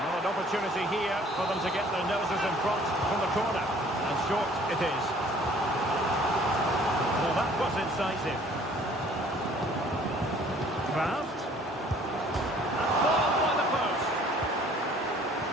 an opportunity here for them to get their noses in front from the corner. And short it is. Well, that was incisive. Kraft. And ball by the post.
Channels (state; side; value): normal; both; correlation 0.55